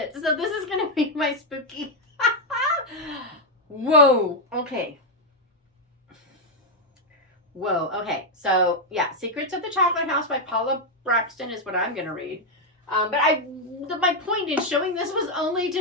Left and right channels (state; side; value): normal; both; correlation 0.00